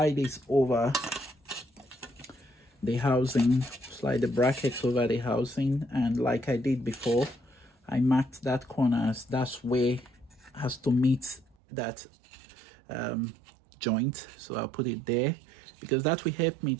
this over the housing, slide the brackets over the housing, and like I did before, I marked that corner as that's where has to meet that joint. So I'll put it there because that will help me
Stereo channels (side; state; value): left; drops out; at 11.6 s